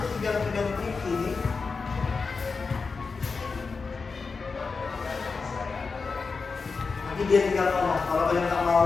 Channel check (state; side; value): quieter; right; 4.6 dB